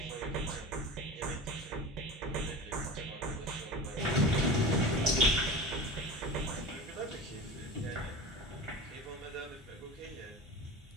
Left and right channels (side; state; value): both; normal; correlation 0.32